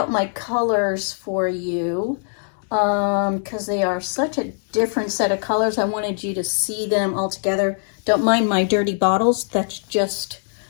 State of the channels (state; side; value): silent; right; digital silence